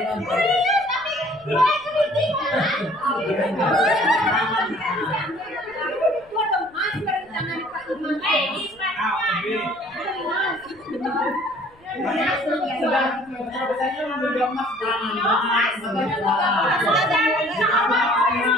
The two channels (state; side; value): noise; left; rumble, 30 dB below the sound